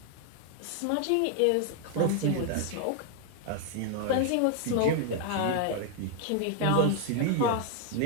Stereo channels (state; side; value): different; both; correlation 0.00